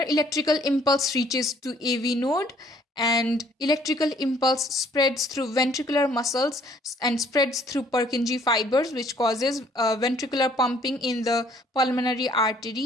electrical impulse reaches to AV node, and electrical impulse spreads through ventricular muscles and spreads through Purkinje fibers, which causes ventricular pumping in the pulmonary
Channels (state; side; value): normal; both; correlation 0.61